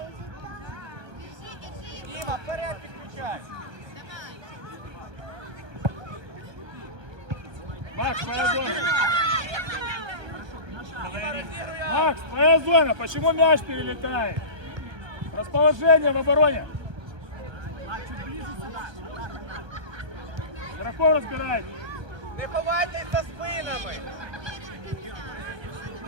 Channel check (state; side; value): late; left; 1.3 ms